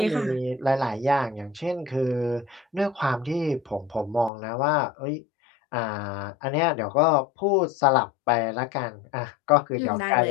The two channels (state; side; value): drops out; right; at 4.3 s